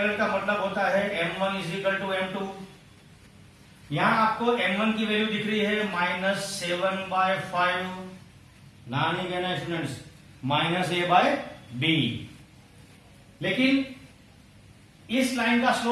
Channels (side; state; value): both; identical; correlation 1.00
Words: का मतलब होता है m1 is equal to m2। यहां आपको m1 की वैल्यू दिख रही है -7/5, ना नहीं कहना स्टूडेंट्स, -a/b। लेकिन इस लाइन का